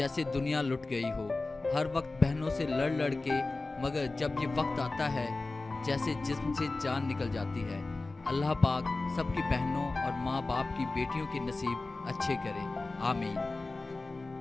दुनिया लुट गई हो। हर वक्त बहनों से लड़ लड़ के, मगर जब ये वक्त आता है जैसे जिस्म से जान निकल जाती है। अल्लाह पाक सबकी बहनों और माँ बाप की बेटियों के नसीब अच्छे करे, आमीन।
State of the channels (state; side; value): quieter; right; 3.3 dB